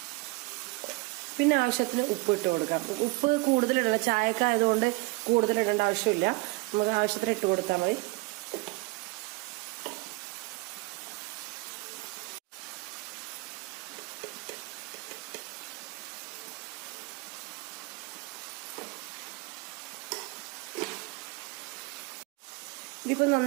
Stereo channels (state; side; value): quieter; left; 26.1 dB